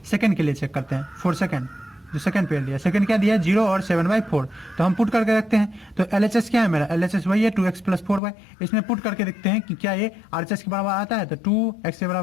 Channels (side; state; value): right; drops out; at 8.2 s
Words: सेकंड के लिए चेक करते हैं, फॉर सेकंड, जो सेकंड पेयर दिया, सेकंड क्या दिया 0 और 7/4, तो हम पुट करके रखते हैं। तो LHS क्या है मेरा, LHS वही है 2x प्लस 4y, इसमें पुट करके देखते हैं कि क्या ये RHS के बराबर आता है। तो 2x के